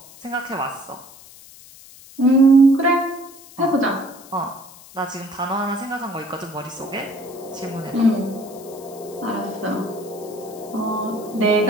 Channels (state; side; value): noise; left; hiss, 20 dB below the sound